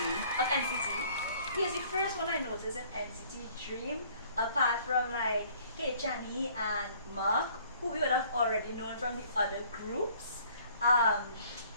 of NCT. He was the first one I noticed in NCT Dream, apart from like Hey Chani and Mark, who we would have already known from the other groups.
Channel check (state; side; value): inverted; both; correlation -0.57